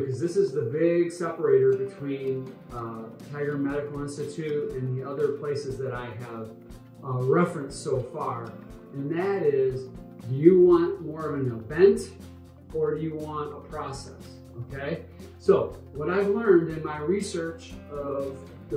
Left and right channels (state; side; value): identical; both; correlation 1.00